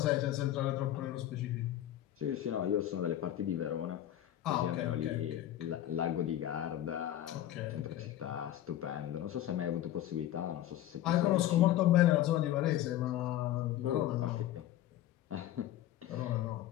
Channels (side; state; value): right; quieter; 12.8 dB